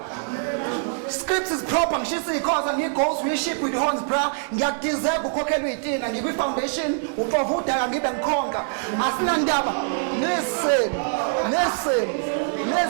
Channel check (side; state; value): left; silent; digital silence